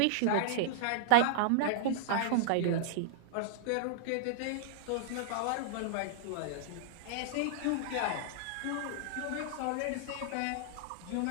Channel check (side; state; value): both; different; correlation -0.02